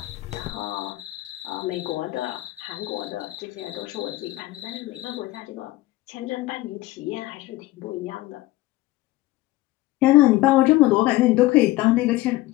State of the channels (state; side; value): quieter; right; 17.9 dB